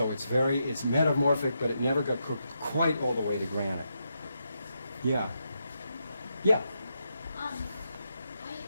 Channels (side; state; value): both; inverted; correlation -0.83